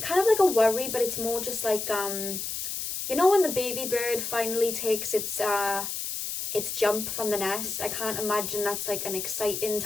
kind of like a worry, but it's more just like you know, when the baby bird finally takes its jump from the nest. I can't imagine that's like an exciting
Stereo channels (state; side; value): noise; left; hiss, 4 dB below the sound